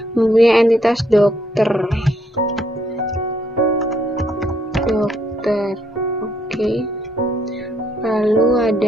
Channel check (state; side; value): normal; both; correlation 0.72